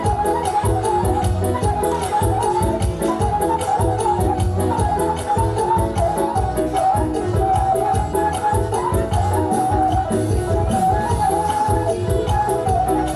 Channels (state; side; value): identical; both; correlation 1.00